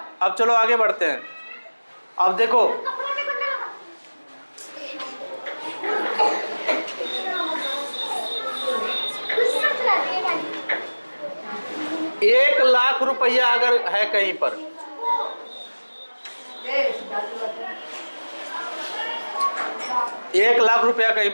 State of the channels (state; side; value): inverted; both; correlation -1.00